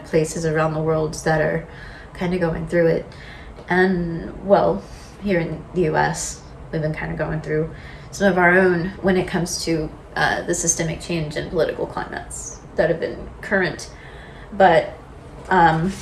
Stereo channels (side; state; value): both; identical; correlation 1.00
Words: places around the world that are kind of going through it. And, well, here in the US, we've been kind of going through some of our own when it comes to the systemic change in political climates that have been current. But,